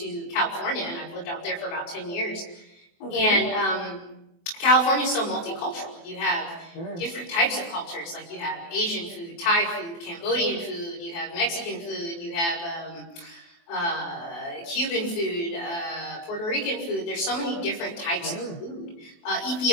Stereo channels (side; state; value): right; late; 24 ms